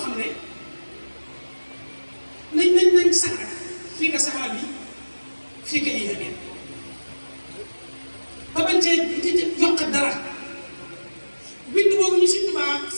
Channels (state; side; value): inverted; both; correlation -1.00